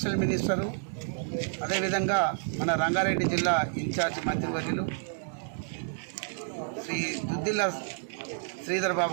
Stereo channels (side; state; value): left; silent; digital silence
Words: మినిస్టరు, అదేవిధంగా మన రంగారెడ్డి జిల్లా ఇన్ఛార్జ్ మంత్రివర్యులు శ్రీ దుద్దిళ్ల శ్రీధర్